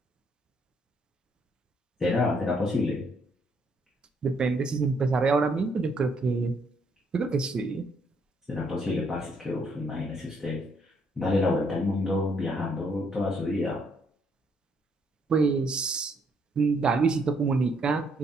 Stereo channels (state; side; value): normal; both; correlation 0.70